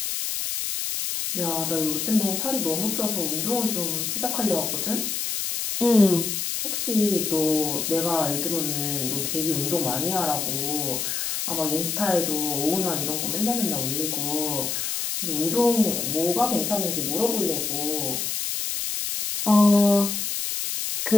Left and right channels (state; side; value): noise; left; hiss, 2 dB below the sound